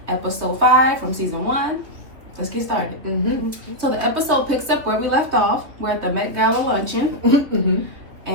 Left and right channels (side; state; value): left; late; 3.3 ms